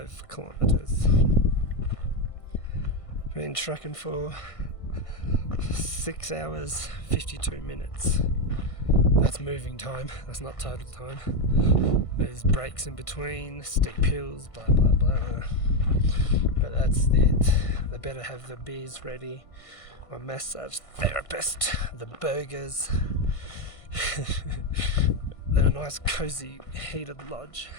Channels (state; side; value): late; right; 1.6 ms